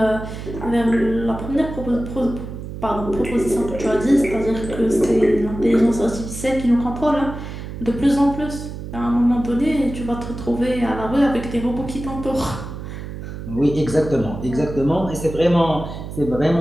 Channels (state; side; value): noise; right; hum, 9 dB below the sound